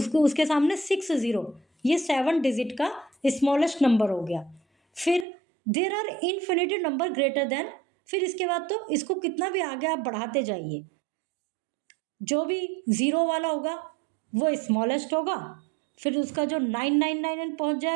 उसके सामने 6 0, ये 7 डिजिट का स्मॉलेस्ट नंबर हो गया। फिर there are infinity number greater than, फिर इसके बाद तो इसको कितना भी आगे आप बढ़ाते जाइए, जो भी 0 वाला होगा वो स्मॉलेस्ट होगा, फिर उसका जो 999 पहुंच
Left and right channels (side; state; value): left; drops out; at 5.2 s